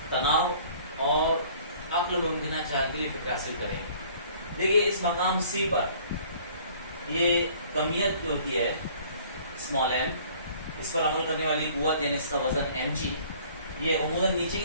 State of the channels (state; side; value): inverted; both; correlation -0.53